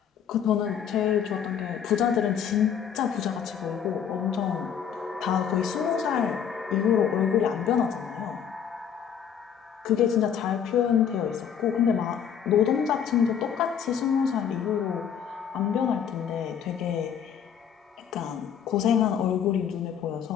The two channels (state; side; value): quieter; right; 8.1 dB